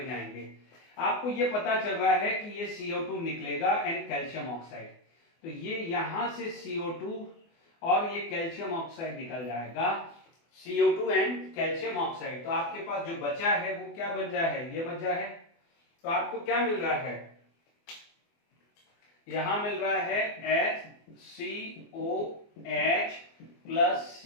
जाएंगे। आपको ये पता चल रहा है कि ये CO2 निकलेगा एंड कैल्शियम ऑक्साइड, तो ये यहां से CO2 और ये कैल्शियम ऑक्साइड निकल जाएगा, CO2 एंड कैल्शियम ऑक्साइड। तो आपके पास जो बचा है वो क्या बचा है? ये बचा है। तो आपको क्या मिल रहा है? यहां मिल रहा है HCOH प्लस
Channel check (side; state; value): right; late; 24 ms